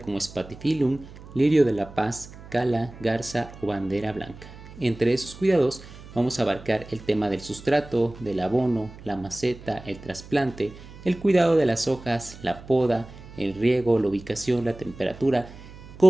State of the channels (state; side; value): noise; right; hum, 17 dB below the sound